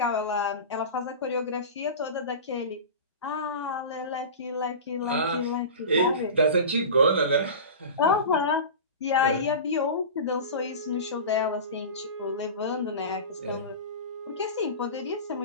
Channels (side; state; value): both; inverted; correlation -0.30